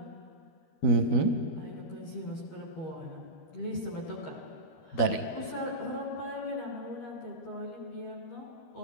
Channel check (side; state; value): right; late; 13 ms